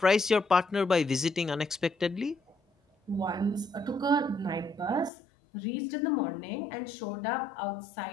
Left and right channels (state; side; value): drops out; right; at 5.1 s